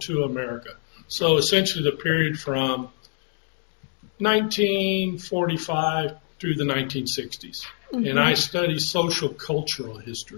II America. So essentially the period from 1945 through the 1960s. And I study social cultural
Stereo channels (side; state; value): right; silent; 62 dB below the other